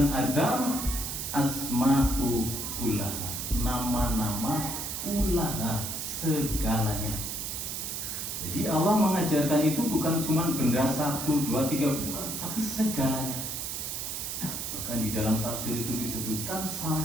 Adam asma'u kullaha, nama-nama kullaha, segalanya. Jadi Allah mengajarkan itu bukan cuma benda 1, 2, 3, bukan, tapi segalanya. Maka Dan di dalam tafsir itu disebutkan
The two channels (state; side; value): noise; right; hiss, 4 dB below the sound